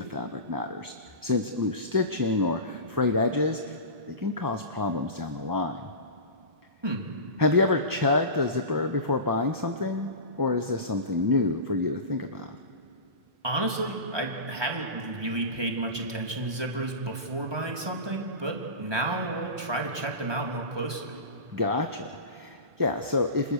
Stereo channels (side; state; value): left; late; 1.2 ms